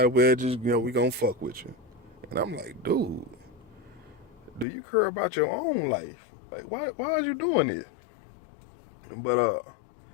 well just, you know, we gonna fuck with you. And I'm like, dude, do you care about your own life? Like, why are you doing this? But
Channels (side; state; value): right; drops out; at 4.7 s